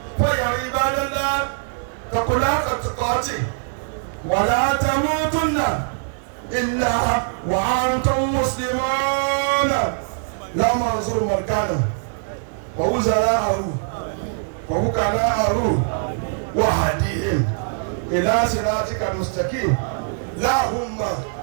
فيا عباد الله، اتقوا الله حق تقاته ولا تموتن إلا وأنتم مسلمون. لا منظور مركانه ووزراءه ووكلاءه وهديهم إلى صراطك المستقيم. اللهم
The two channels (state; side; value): silent; left; digital silence